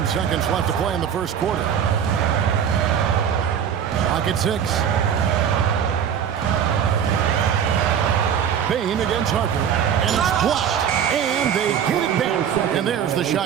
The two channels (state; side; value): quieter; left; 8.5 dB